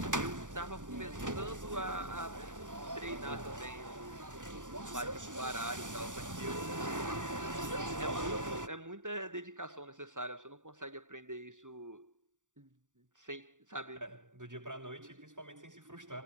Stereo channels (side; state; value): left; late; 0.87 ms